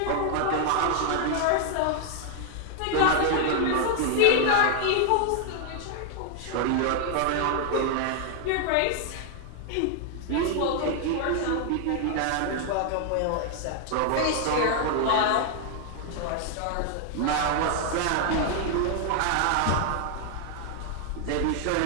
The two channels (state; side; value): different; both; correlation 0.00